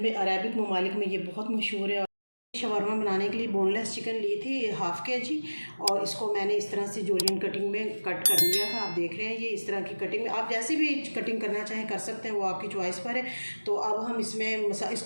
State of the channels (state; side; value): inverted; both; correlation -1.00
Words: ममालिक में ये बहुत मशहूर है। शवरमा बनाने के लिए बोनलेस चिकन ली थी 1/2 kg, और इसको मैंने इस तरह से जूलियन कटिंग में कट कर लिया था। आप देख रहे हैं ये इस तरह की कटिंग में, आप जैसे भी कटिंग करना चाहें कर सकते हैं, वो आपकी चॉइस पर है। तो अब हम इसमें